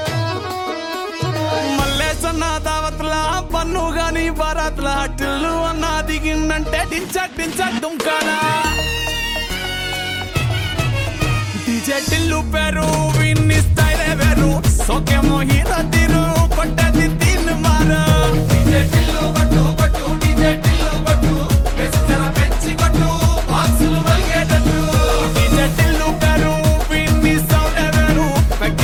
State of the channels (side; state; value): both; identical; correlation 1.00